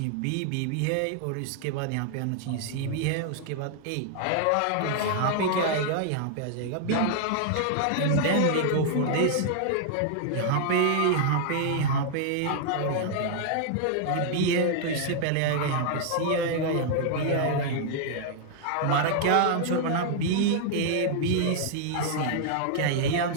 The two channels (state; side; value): different; both; correlation -0.01